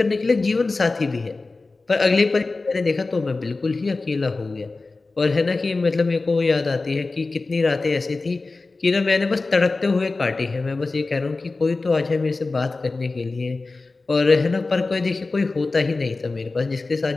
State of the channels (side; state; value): right; quieter; 3.6 dB